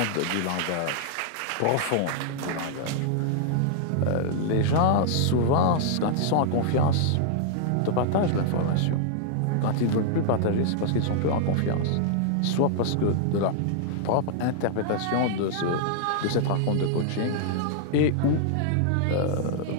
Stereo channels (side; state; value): both; different; correlation -0.01